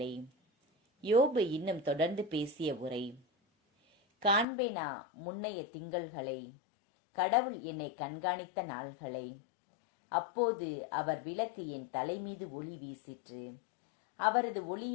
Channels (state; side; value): drops out; right; at 4.5 s